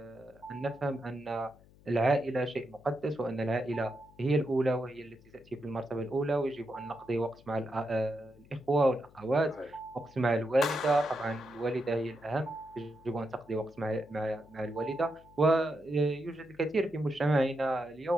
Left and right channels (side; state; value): left; noise; hum, 26 dB below the sound